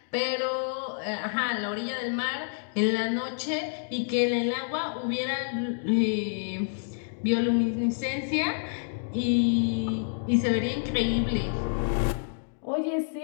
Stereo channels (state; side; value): silent; right; digital silence